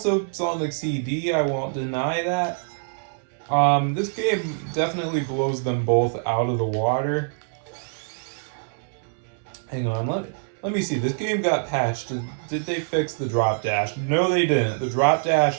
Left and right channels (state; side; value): silent; left; digital silence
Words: Sonic CD, I won't deny that. This game definitely blows them both out of the water. Hang on, let me see. This game got patched. Did they fix the drop dash? No, they didn't. The drop